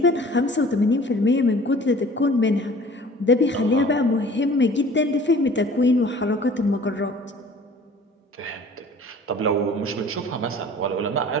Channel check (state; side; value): normal; both; correlation 0.48